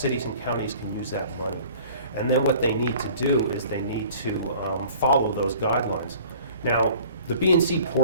and counties can use that money. And then what they need to do is they need to follow those guidelines. Now, the B&C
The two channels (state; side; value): inverted; both; correlation -0.49